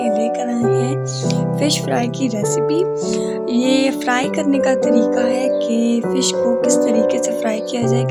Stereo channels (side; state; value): both; identical; correlation 1.00